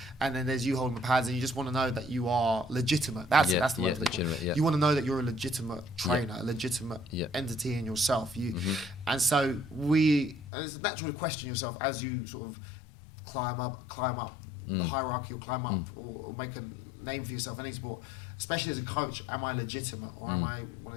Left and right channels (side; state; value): right; drops out; at 10.5 s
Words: and then there's you holding the pads, and you just want to know that you are legitimate. That's it. That's the word. You want to know that you're a legitimate trainer, a legitimate entity in yourself. And so and it's natural to question yourself as you sort of climb up the hierarchy, or climb up or make a name for yourself in any sport. Especially as a coach, am I legitimate, or am I one